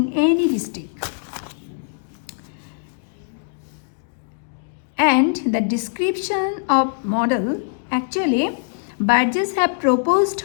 any district. And the description of model, actually Burgess have proposed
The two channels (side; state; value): right; silent; 64 dB below the other